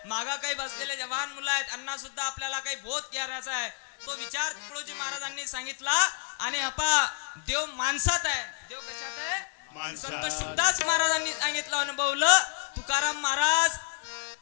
मागा काही बसलेले जवान मुलं आहेत, यांना सुद्धा आपल्याला काही बोध करायचा आहे. तो विचार तुकडोजी महाराजांनी सांगितला. आणि देव माणसात आहे. देव कशात आहे? संत शुकदास महाराजांनी सांगितलं, अनुभवलं. तुकाराम महाराज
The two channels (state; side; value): silent; right; 58 dB below the other